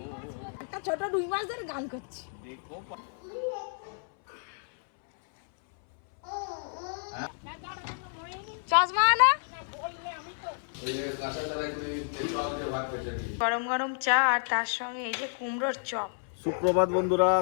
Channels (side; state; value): right; silent; 57 dB below the other